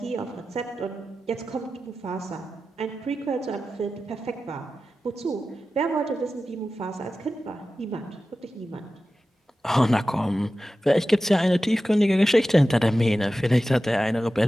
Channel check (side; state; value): both; normal; correlation 0.94